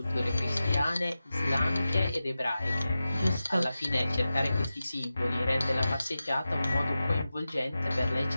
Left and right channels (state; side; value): inverted; both; correlation -0.93